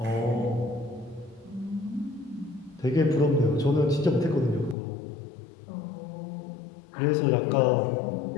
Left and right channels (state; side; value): drops out; right; at 4.8 s